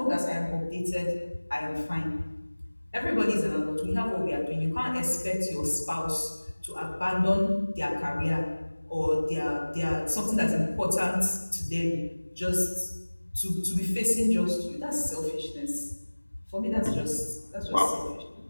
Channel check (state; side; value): inverted; both; correlation -1.00